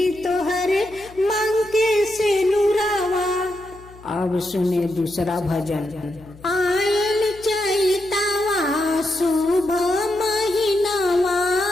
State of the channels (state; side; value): noise; left; hum, 22 dB below the sound